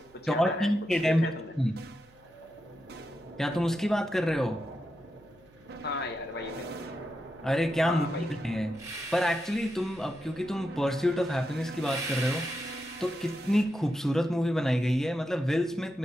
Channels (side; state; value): right; noise; hum, 30 dB below the sound